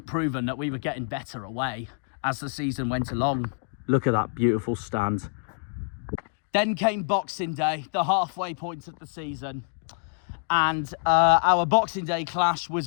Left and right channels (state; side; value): silent; right; digital silence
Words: proven, that we were getting better away as the season went along. Look at that beautiful stand. Then came Boxing Day, the halfway point of the season. And our Boxing Day clash